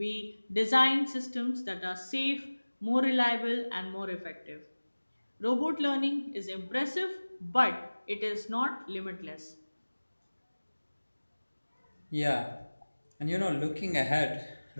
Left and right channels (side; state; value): both; inverted; correlation -1.00